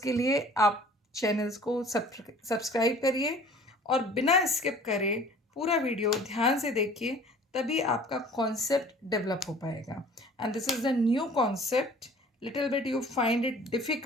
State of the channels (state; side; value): normal; both; correlation 0.49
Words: लिए आप चैनल्स को सब्सक्राइब करिए और बिना स्किप करे पूरा वीडियो ध्यान से देखिए, तभी आपका कॉन्सेप्ट डेवलप हो पाएगा. And this is the new concept. Little bit you find it